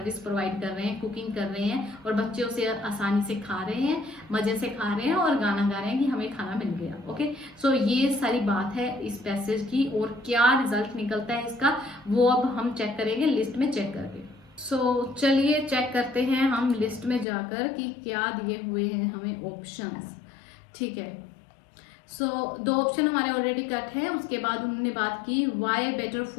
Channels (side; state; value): right; drops out; at 17.2 s